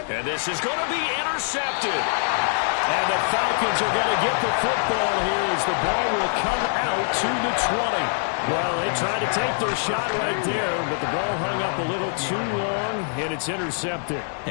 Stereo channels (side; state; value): right; silent; digital silence